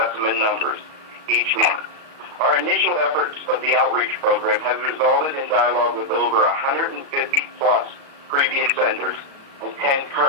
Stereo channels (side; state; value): left; late; 36 ms